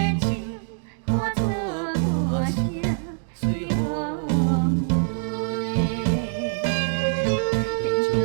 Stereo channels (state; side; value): silent; left; digital silence